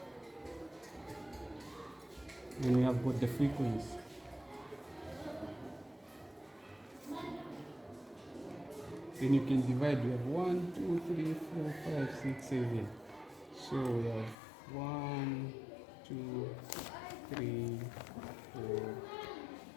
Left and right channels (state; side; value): drops out; right; at 14.4 s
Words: And we have got the frequency. Then you can divide. We have 1, 2, 3, 4, 5, 6, 7. So we have 1, 2, 3, 4,